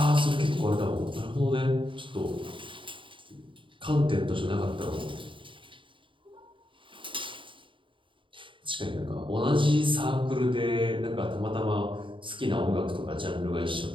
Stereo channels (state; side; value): late; left; 0.25 ms